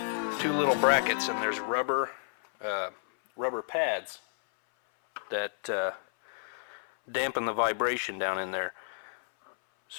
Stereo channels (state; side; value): silent; right; 57 dB below the other